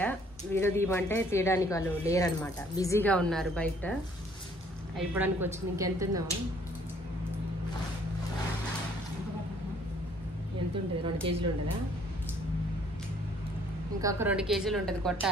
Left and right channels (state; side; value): normal; both; correlation 0.61